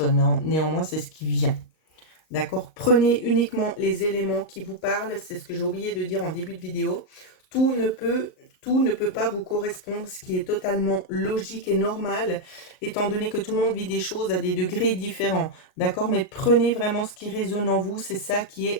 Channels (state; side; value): late; right; 38 ms